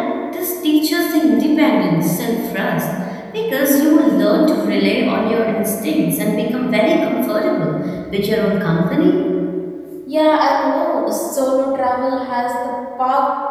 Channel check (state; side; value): identical; both; correlation 1.00